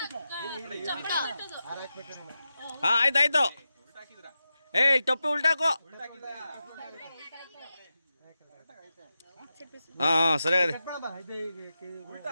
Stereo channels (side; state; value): both; inverted; correlation -0.91